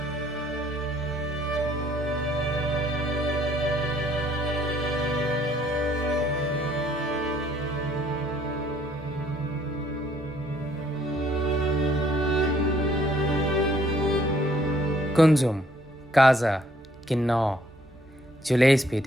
Kunzum, Kaza, Kinnaur,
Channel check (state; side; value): noise; right; rumble, 27 dB below the sound